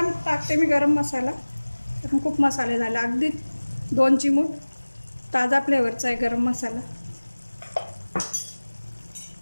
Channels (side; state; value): both; inverted; correlation -1.00